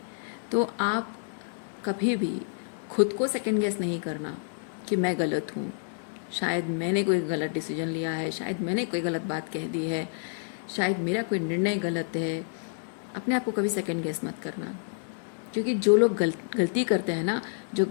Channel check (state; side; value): silent; right; digital silence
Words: तो आप कभी भी खुद को सेकंड गेस नहीं करना कि मैं गलत हूँ, शायद मैंने कोई गलत डिसीजन लिया है, शायद मैंने कोई गलत बात कह दी है, शायद मेरा कोई निर्णय गलत है। अपने आप को कभी सेकंड गेस मत करना, क्योंकि जो लोग गलती करते हैं ना, जो